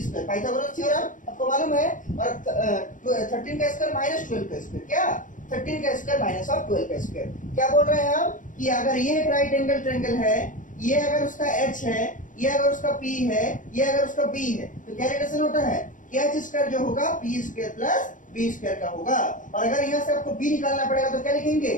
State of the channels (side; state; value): right; late; 0.38 ms